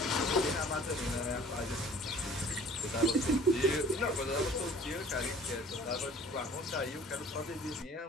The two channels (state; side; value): normal; both; correlation 0.50